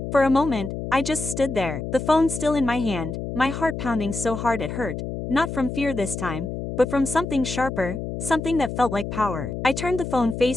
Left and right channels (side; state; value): left; noise; hum, 6 dB below the sound